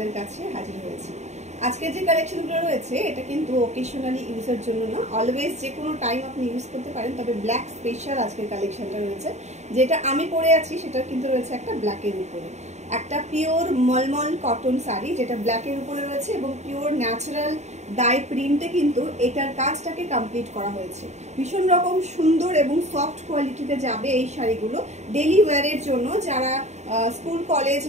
কাছে হাজির হয়েছি। আজকে যে কালেকশনগুলো রয়েছে এটা কিন্তু ওকেশনালি ইউজের জন্য না, অলওয়েজ যে কোনো টাইম আপনি ইউজ করতে পারেন। তবে ব্ল্যাক স্পেশাল আজকের কালেকশনটা রয়েছে, যেটা আমি পরে আছি সেটা কিন্তু রয়েছে একটা ব্ল্যাকের উপরে, একটা পিওর মলমল কটন শাড়ি যেটা ব্ল্যাকের উপরে রয়েছে এবং পিওর ন্যাচারাল ডাই প্রিন্টে কিন্তু এটার কাজটাকে কমপ্লিট করা হয়েছে। ভীষণ রকম সুন্দর এবং সফট কোয়ালিটিতে যাবে এই শাড়িগুলো ডেলি ওয়্যারের জন্য। যারা স্কুল কলেজ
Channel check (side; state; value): left; late; 0.33 ms